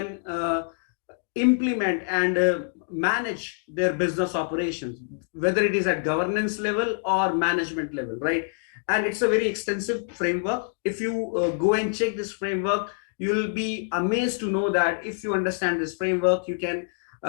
implement and manage their business operations, whether it is at governance level or management level, right? And it's a very extensive framework. If you go and check this framework, you'll be amazed to know that if you understand this framework, you can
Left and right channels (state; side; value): silent; right; digital silence